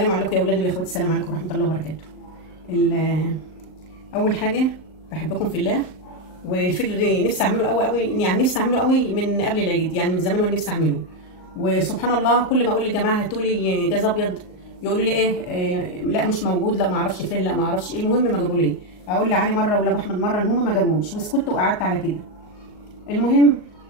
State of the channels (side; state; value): right; late; 38 ms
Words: عليكم يا اولاد ويا اخواتي، السلام عليكم ورحمه الله وبركاته. اول حاجه بحبكم في الله، والفيديو ده نفسي اعمله قوي يعني نفسي اعمله قوي من قبل العيد، يعني من زمان وانا نفسي اعمله. وسبحان الله كل ما اقول لجماعه هاتوا لي جاز ابيض يقولوا لي ايه لا مش موجود، لا ما اعرفش فين، لا ما اعرفش ايه، المهم ما جابوا لي. اقول لعلي مره ولا ابو احمد مره ان هم ما جابوش، وسكت وقعدت على كده. المهم